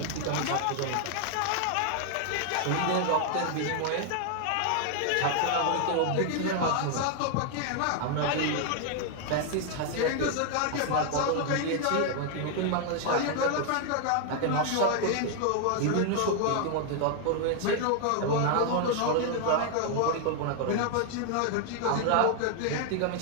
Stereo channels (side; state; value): both; different; correlation 0.00